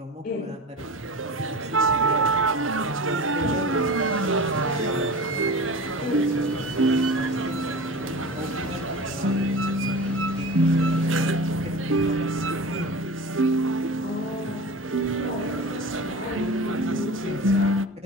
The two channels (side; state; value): both; normal; correlation 0.33